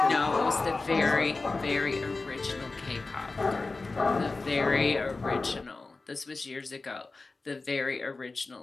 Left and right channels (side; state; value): right; quieter; 3.6 dB